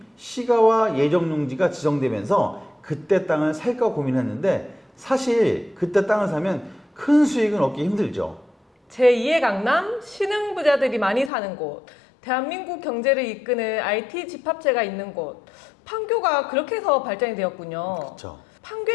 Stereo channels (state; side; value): drops out; right; at 11.3 s